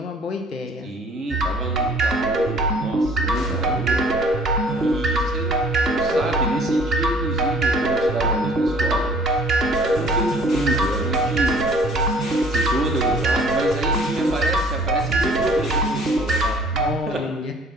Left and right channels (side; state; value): both; normal; correlation 0.54